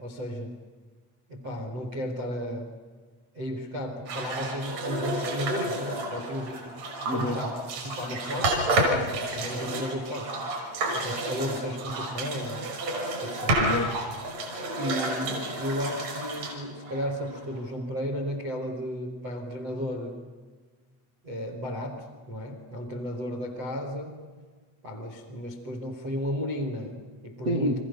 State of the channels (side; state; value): left; late; 8.3 ms